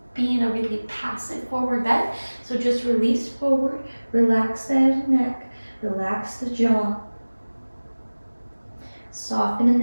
be in a really passive forward bend. So just release forward, relax the head and neck, relax the jaw. Soften in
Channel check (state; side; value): inverted; both; correlation -1.00